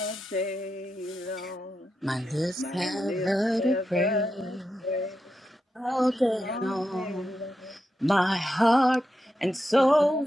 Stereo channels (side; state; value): both; normal; correlation 0.87